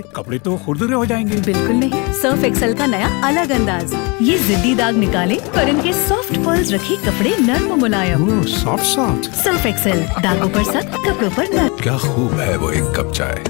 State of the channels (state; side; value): quieter; right; 29.6 dB